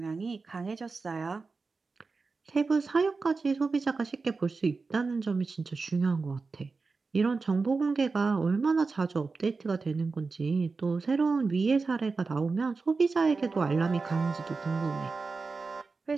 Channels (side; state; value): left; quieter; 4.2 dB